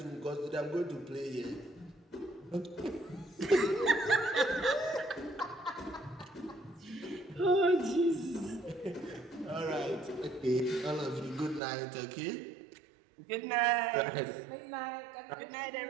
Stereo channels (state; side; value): drops out; left; at 11.6 s